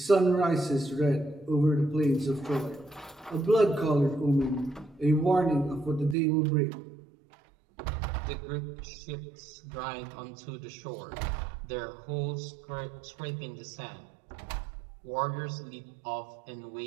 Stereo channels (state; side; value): drops out; left; at 6.2 s